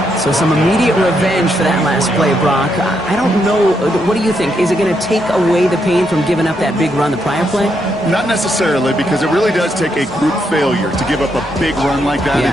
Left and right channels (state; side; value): normal; both; correlation 0.79